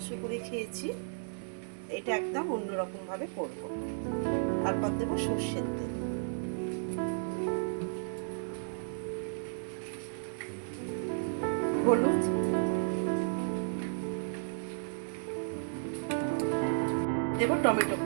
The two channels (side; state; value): left; silent; digital silence